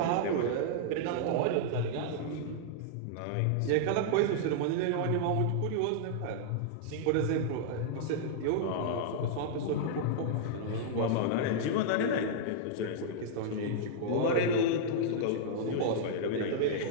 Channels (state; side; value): different; both; correlation -0.01